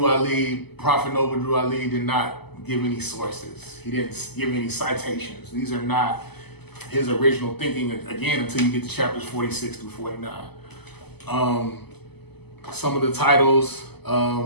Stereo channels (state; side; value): late; right; 0.98 ms